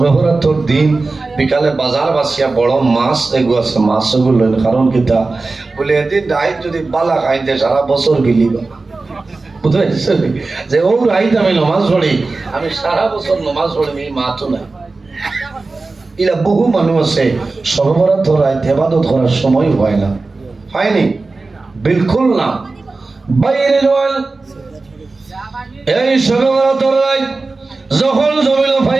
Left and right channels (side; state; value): left; quieter; 3.6 dB